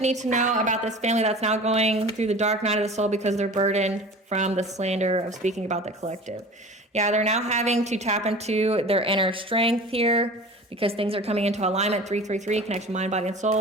need to know about this family that's now going through the dark night of the soul because they're burdened from the slander of speaking about the collective? Yeah, they're now having to tap into their inner strength here because things are coming into alignment. 333, connection, mind, body, and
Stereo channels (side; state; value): both; normal; correlation 0.39